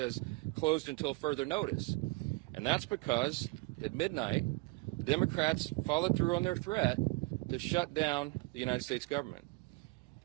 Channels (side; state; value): left; quieter; 25.2 dB